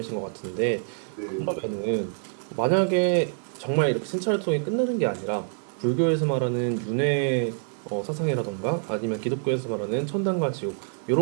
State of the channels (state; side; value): silent; left; 61 dB below the other